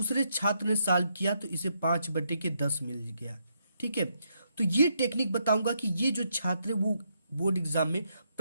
छात्र ने सॉल्व किया तो इसे 5/10 मिल गया। ठीक है, तो ये टेक्निक बताऊंगा कि ये जो छात्र है वो बोर्ड एग्जाम में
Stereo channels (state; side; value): inverted; both; correlation -0.77